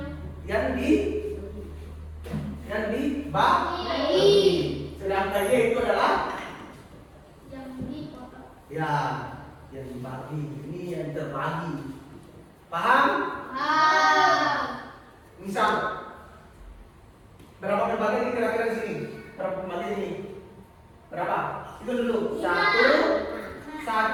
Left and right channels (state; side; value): identical; both; correlation 1.00